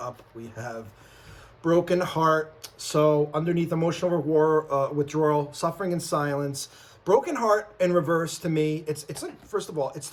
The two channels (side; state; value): both; identical; correlation 1.00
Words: we have broken heart. So underneath emotional withdrawal, suffering in silence, broken heart in reverse to me, it's like, first of all, it's